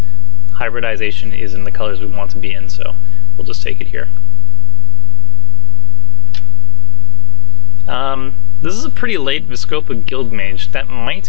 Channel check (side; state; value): right; quieter; 16.5 dB